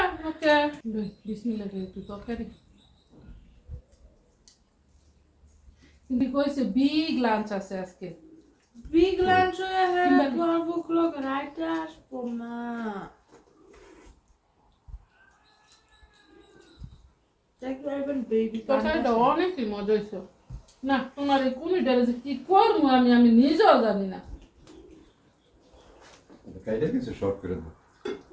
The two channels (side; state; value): both; identical; correlation 1.00